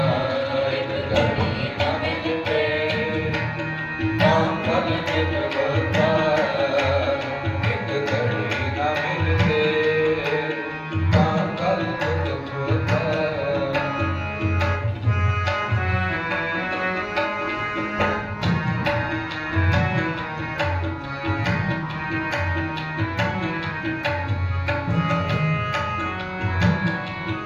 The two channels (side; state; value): both; identical; correlation 1.00